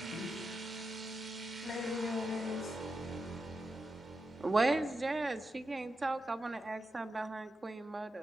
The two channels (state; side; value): normal; both; correlation 0.88